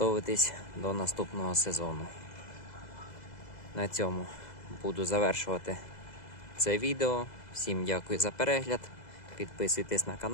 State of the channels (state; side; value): late; right; 2.0 ms